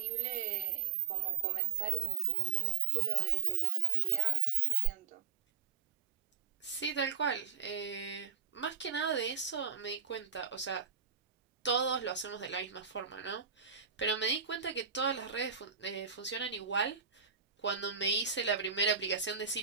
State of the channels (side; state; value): left; quieter; 7.3 dB